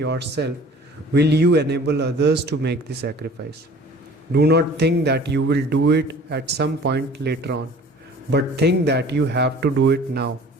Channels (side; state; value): both; normal; correlation 0.47